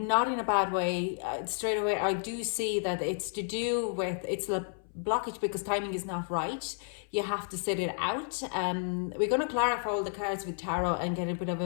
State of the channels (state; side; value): silent; right; 57 dB below the other